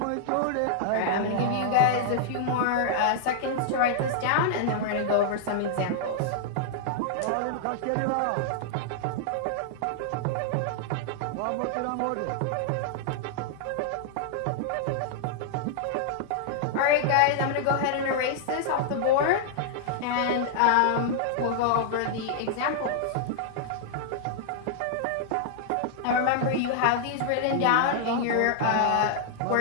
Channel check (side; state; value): both; different; correlation -0.01